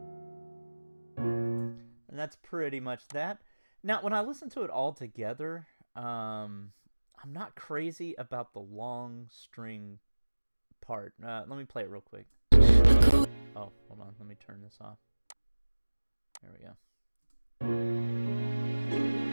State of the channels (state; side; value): inverted; both; correlation -1.00